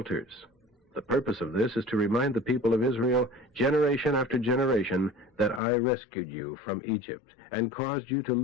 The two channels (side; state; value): right; drops out; at 5.6 s